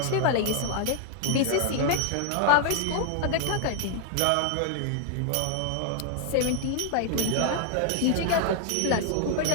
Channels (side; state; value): both; different; correlation 0.00